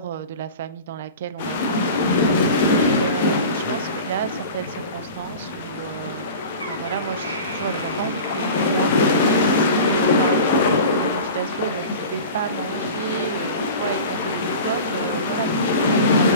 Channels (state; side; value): inverted; both; correlation -0.35